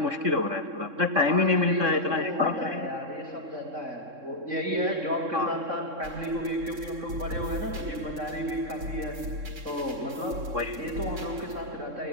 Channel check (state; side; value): late; left; 3.6 ms